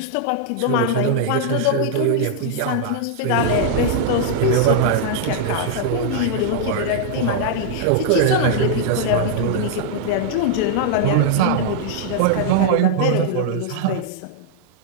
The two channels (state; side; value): different; both; correlation -0.01